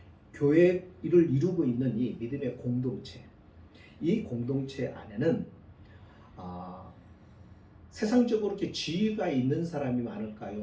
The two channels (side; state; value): both; identical; correlation 1.00